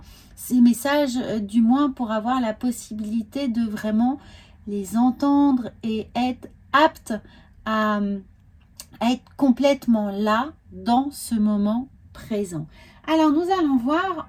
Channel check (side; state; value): both; identical; correlation 1.00